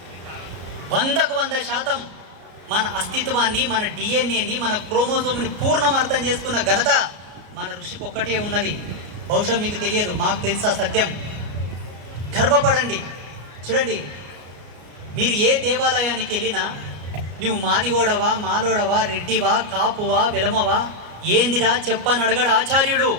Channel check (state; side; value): late; left; 33 ms